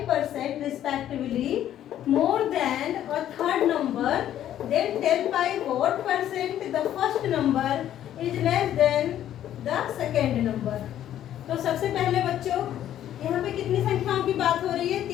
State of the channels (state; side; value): quieter; right; 11.5 dB